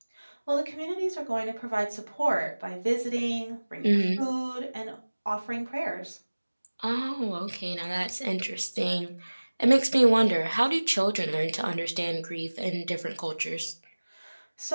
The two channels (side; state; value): both; inverted; correlation -1.00